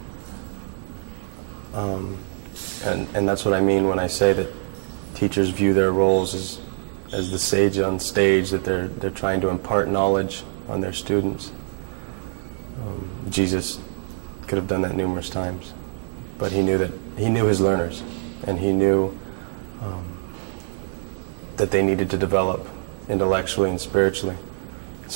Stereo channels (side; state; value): left; silent; digital silence